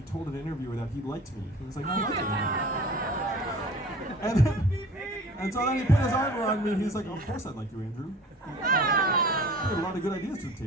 told an interviewer that he liked me. He was like, I like you. And so then he put his arm around me and he's like, of course I'd like you, Andrew. You had a lot of good ideas to the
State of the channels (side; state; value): both; normal; correlation 0.44